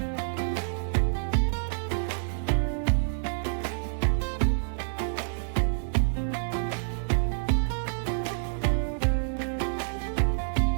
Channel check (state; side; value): silent; left; digital silence